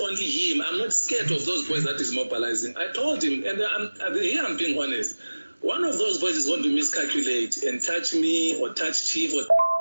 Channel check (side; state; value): both; inverted; correlation -1.00